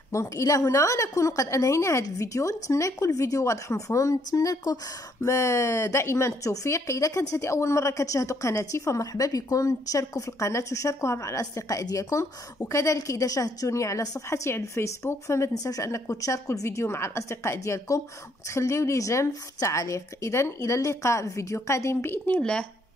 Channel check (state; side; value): normal; both; correlation 0.69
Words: دونك الى هنا نكون قد انهينا هذا الفيديو. نتمنى يكون الفيديو واضح ومفهوم. نتمنى لكم دائما التوفيق. اذا كانت هذه اول مره كتشاهدوا قناتي فمرحبا بكم، تشاركوا في القناه وشاركوها مع الاصدقاء ديالكم، وكذلك اذا شاهدتوني على صفحتي على الفيسبوك فما تنساوش انكم تشاركوا الفيديو مع الاصدقاء ديالكم وتخليوا لي جيم في التعليق. اذا الى اللقاء في فيديو قادم باذن الله.